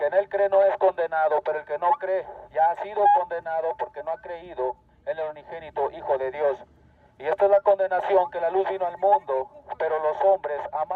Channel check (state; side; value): identical; both; correlation 1.00